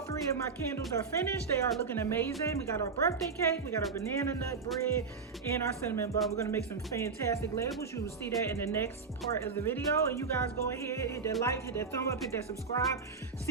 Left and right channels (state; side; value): quieter; left; 5.1 dB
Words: 3 of my candles are finished. They are looking amazing. We got our birthday cake, we got our banana nut bread, and our cinnamon bun. We're gonna make some fantastic labels. You will see that in the next part of the video. And you guys go ahead, hit that like, hit that thumb up, hit that subscribe.